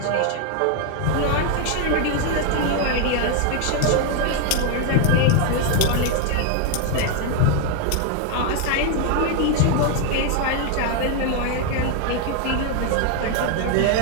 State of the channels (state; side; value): different; both; correlation 0.01